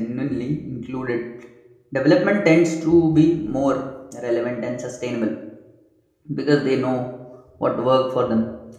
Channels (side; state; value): both; identical; correlation 1.00